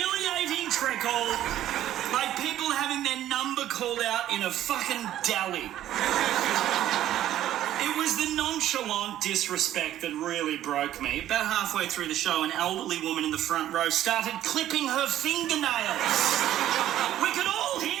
trickle, like people having their number called out in a fucking deli. It was the nonchalant disrespect that really broke me. About halfway through the show, an elderly woman in the front row started clipping her fingernails. We could all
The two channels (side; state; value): left; quieter; 12.6 dB